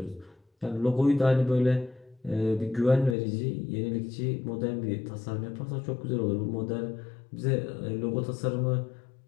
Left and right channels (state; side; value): drops out; right; at 3.2 s